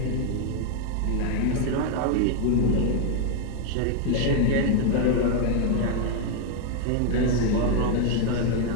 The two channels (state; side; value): different; both; correlation 0.00